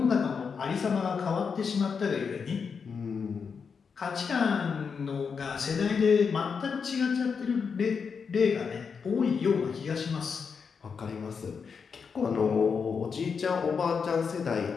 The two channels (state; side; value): quieter; right; 5.9 dB